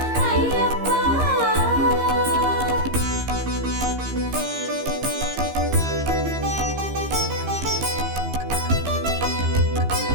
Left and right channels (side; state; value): left; late; 15 ms